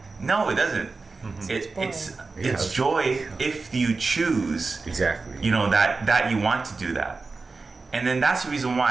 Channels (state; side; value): quieter; left; 4.0 dB